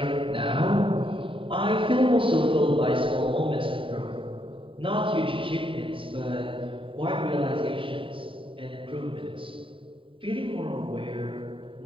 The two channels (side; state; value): left; late; 0.25 ms